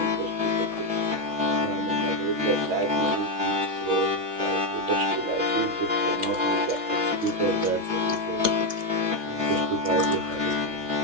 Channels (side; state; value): left; late; 6.2 ms